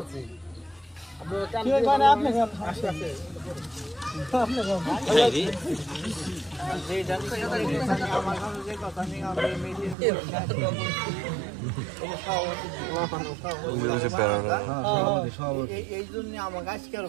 এই জন্য আমাকে আজকের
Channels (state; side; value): drops out; left; at 10.0 s